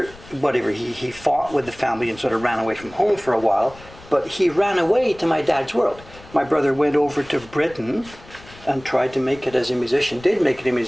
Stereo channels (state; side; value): noise; left; rumble, 21 dB below the sound